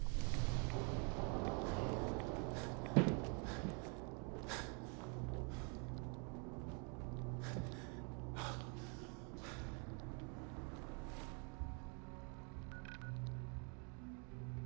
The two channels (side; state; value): left; quieter; 36.9 dB